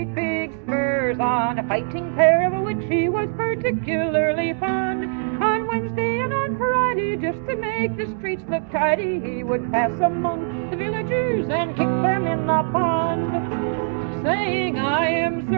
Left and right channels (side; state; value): left; silent; digital silence